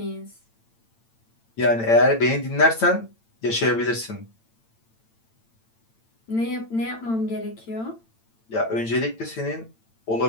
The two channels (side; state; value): right; late; 8.9 ms